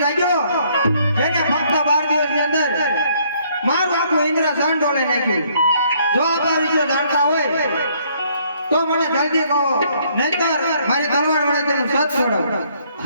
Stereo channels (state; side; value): inverted; both; correlation -0.66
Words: લાગ્યો જેને ફક્ત 12 દિવસની અંદર મારું આખું ઇન્દ્રસન ડોલાઈ નાખ્યું. જો આપ આ વિશે જાણતા હોય તો મને જલ્દી કહો, નહીતર મારી તલવાર વડે તેનું સત છોડો.